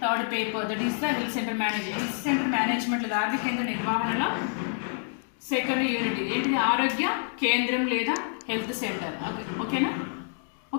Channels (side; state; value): right; silent; 60 dB below the other